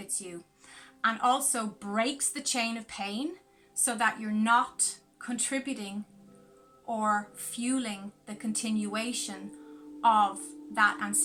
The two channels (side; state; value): both; identical; correlation 1.00